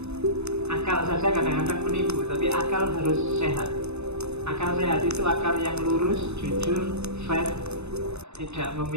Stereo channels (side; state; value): left; late; 0.81 ms